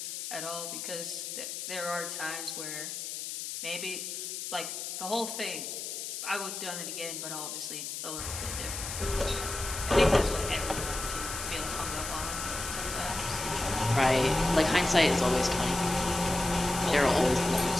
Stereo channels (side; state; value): left; noise; hiss, 6 dB below the sound